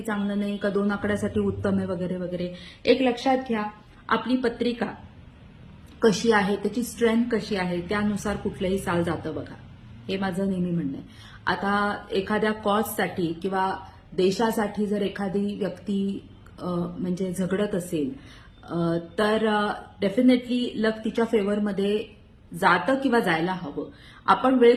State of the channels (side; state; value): both; identical; correlation 1.00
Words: चांगलं नाही का 2 आकड्यासाठी उत्तम आहे वगैरे वगैरे. एक लक्षात घ्या, आपली पत्रिका कशी आहे, त्याची स्ट्रेंथ कशी आहे, त्यानुसार कुठलंही साल जातं बघा. हे माझं नेहमी म्हणणं आहे. आता एखाद्या कॉजसाठी किंवा देशासाठी जर एखादी व्यक्ती म्हणजे झगडत असेल तर डेफिनेटली लक तिच्या फेवरमध्ये जातं किंवा जायला हवं. आपण वेळ